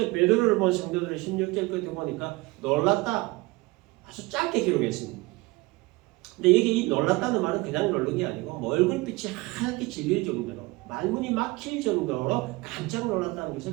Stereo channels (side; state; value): left; quieter; 22.4 dB